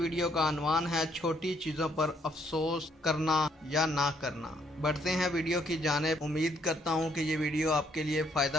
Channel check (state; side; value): normal; both; correlation 0.69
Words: का अनवान है छोटी चीज़ों पर अफसोस करना या ना करना। बढ़ते हैं वीडियो की जानिब। उम्मीद करता हूँ कि ये वीडियो आपके लिए